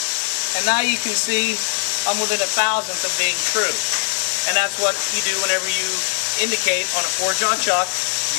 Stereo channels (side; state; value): right; silent; digital silence